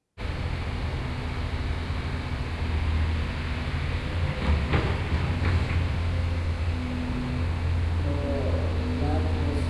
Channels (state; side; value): identical; both; correlation 1.00